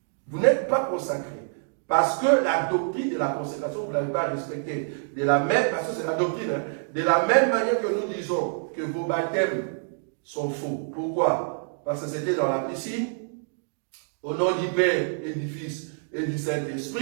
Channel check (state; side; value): silent; left; digital silence